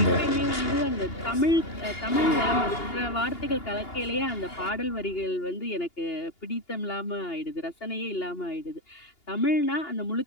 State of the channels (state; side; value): late; right; 2.8 ms